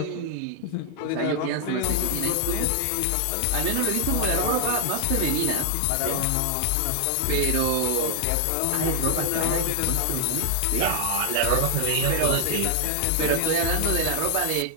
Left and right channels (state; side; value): different; both; correlation 0.00